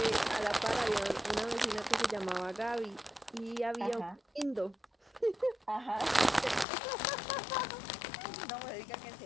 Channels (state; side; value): drops out; right; at 6.7 s